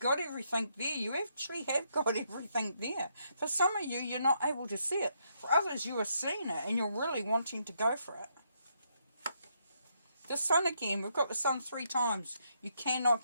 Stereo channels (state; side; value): inverted; both; correlation -0.76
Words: everything there. You actually have got everything there. For some of you, you're not able to see it. For others, you are seeing it and you're really wanting to go for it. The Sun again. We've got the Sun 3 times. You